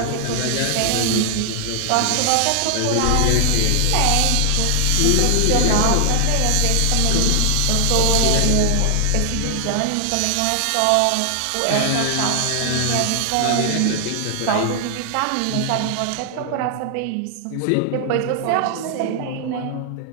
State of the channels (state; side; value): different; both; correlation 0.00